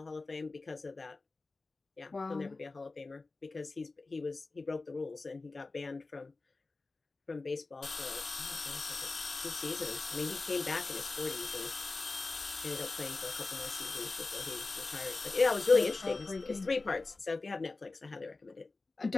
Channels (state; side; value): quieter; right; 3.6 dB